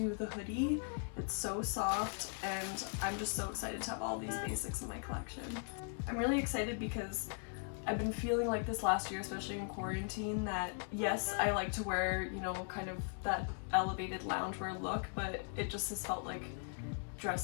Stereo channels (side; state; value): right; silent; 52 dB below the other